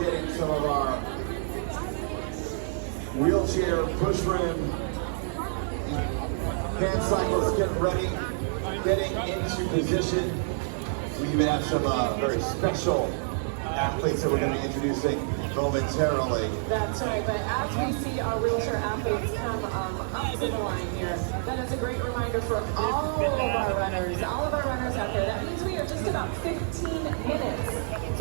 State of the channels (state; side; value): silent; left; digital silence